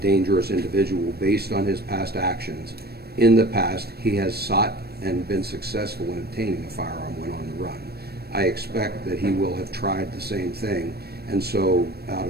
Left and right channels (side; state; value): left; late; 0.46 ms